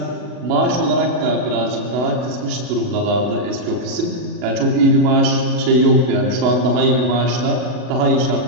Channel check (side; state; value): left; late; 40 ms